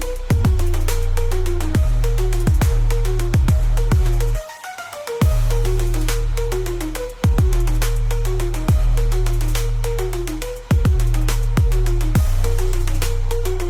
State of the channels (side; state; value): both; identical; correlation 1.00